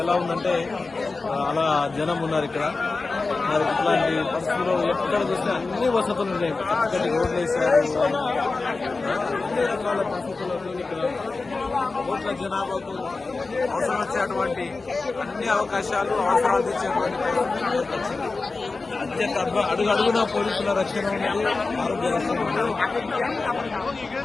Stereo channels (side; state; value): right; quieter; 3.8 dB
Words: ఎలా ఉందంటే అలా జనం ఉన్నారు ఇక్కడ. మరి ఇట్లాంటి పరిస్థితుల్లో ఎక్కడ చూసినా అన్ని వసతులు ఉన్నాయి. చక్కటి రోడ్లు వేశారు. అన్ని రకాల పరిస్థితుల్లో ఇక్కడ కోట్ల జనాభాకు అవసరం వచ్చేటువంటి అన్ని అవకాశాలు అవసరాలు తెచ్చేటువంటి పరిస్థితులు అత్యంత అడుగున పోలీసుల రక్షణ ఉన్నది, ఆరోగ్య రక్షణ ఉన్నది.